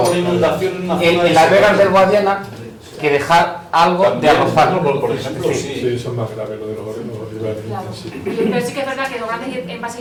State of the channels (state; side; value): identical; both; correlation 1.00